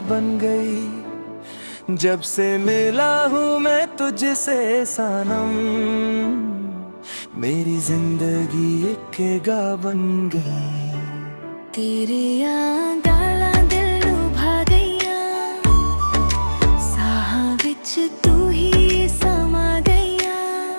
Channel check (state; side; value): inverted; both; correlation -1.00